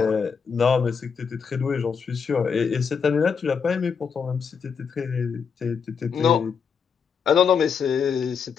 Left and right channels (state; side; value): quieter; right; 6.3 dB